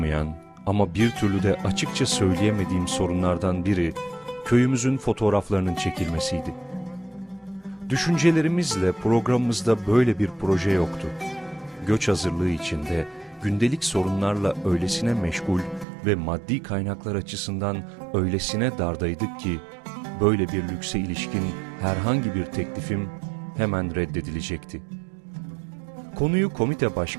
ama bir türlü de açıkça söyleyemediğim sorunlardan biri köyümüzün fotoğraflarının çekilmesiydi. Düşüncelerimizle programımızda böyle bir proje yoktu. Göç hazırlığı içinde gündelik sorunlarla öylesine meşgul ve maddi kaynaklar açısından öylesine dardaydık ki böyle bir lükse ilişkin herhangi bir teklifim hemen reddedilecekti. Konuyu komite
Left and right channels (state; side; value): drops out; left; at 15.9 s